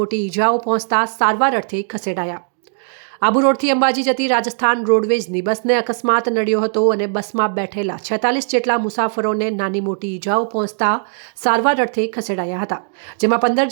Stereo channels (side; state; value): left; silent; 67 dB below the other